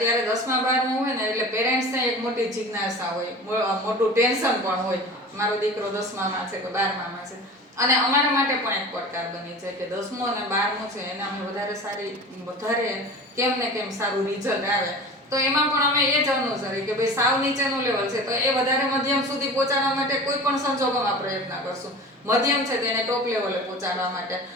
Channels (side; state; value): both; normal; correlation 0.36